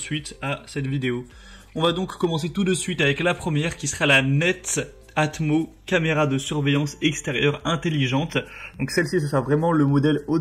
à cette vidéo. On va donc commencer tout de suite avec la première qui sera la Netatmo caméra de surveillance extérieure intelligente. Donc celle-ci, ce sera vraiment le modèle haut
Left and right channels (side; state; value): both; identical; correlation 1.00